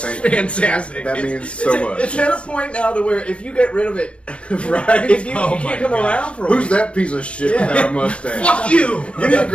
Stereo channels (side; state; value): right; late; 0.060 ms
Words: Thank you. fantastic. That It's- means so much. It's at a point now to where if you get rid of it, Right? if you, Oh you my can't come gosh. around for a Who's week. that piece of shit Yeah. without a mustache? Fuck you! You need to